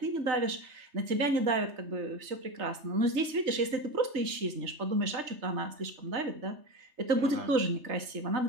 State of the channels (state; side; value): late; left; 3.3 ms